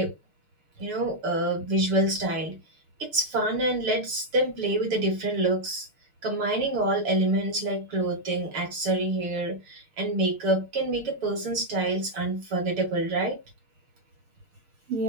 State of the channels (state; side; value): late; left; 6.5 ms